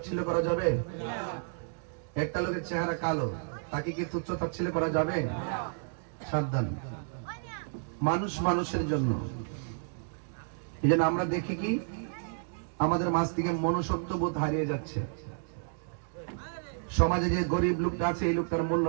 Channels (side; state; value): left; silent; digital silence